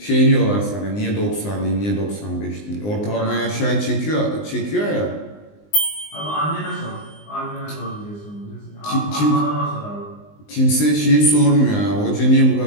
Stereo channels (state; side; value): late; right; 19 ms